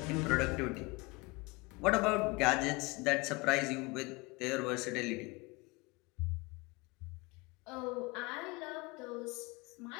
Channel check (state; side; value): quieter; right; 25.1 dB